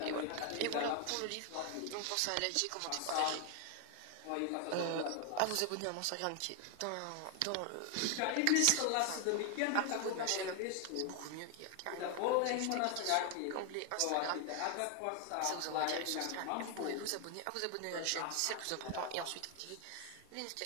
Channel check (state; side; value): different; both; correlation 0.01